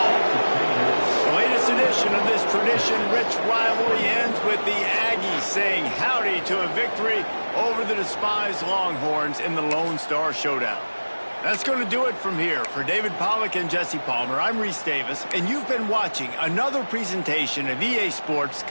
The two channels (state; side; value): inverted; both; correlation -1.00